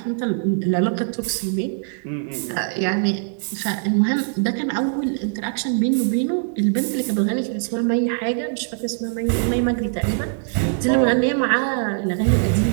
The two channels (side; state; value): left; silent; digital silence